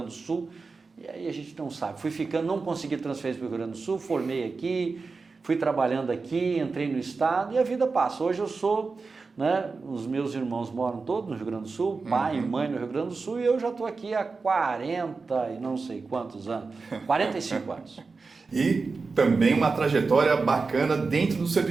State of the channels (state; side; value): quieter; left; 4.3 dB